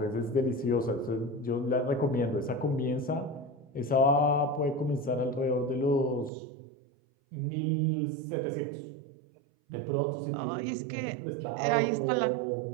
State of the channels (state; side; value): drops out; left; at 6.3 s